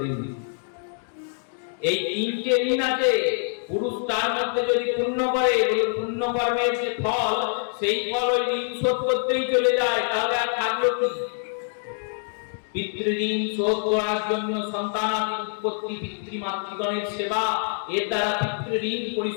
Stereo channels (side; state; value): right; silent; 62 dB below the other